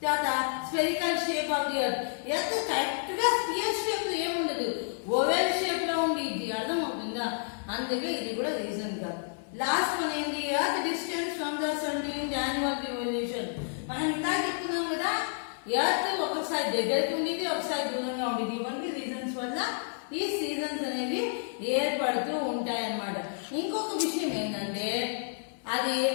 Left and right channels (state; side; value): silent; right; 58 dB below the other